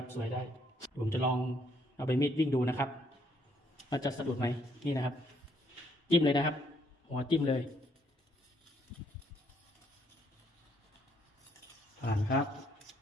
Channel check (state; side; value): normal; both; correlation 0.69